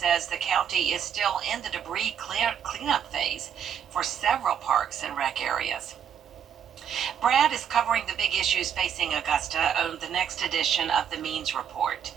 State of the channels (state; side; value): quieter; left; 8.6 dB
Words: the county is still in the debris cleanup phase for several parks and rec areas. Brad is covering the big issues facing Augusta on the next edition of the Means Report.